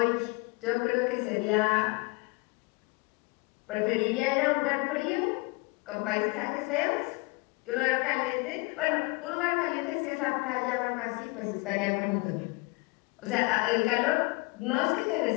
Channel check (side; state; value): right; quieter; 27.4 dB